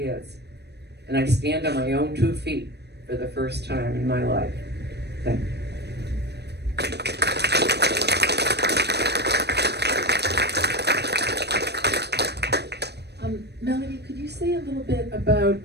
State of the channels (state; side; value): late; left; 0.49 ms